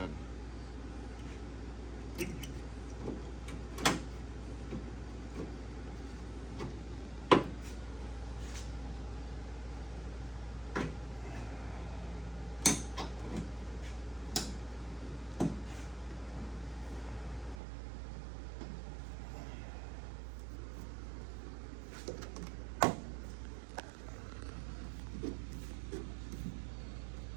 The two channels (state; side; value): drops out; left; at 17.6 s